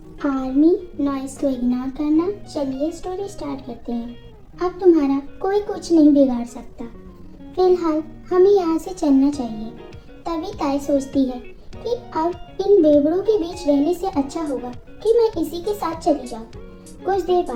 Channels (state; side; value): identical; both; correlation 1.00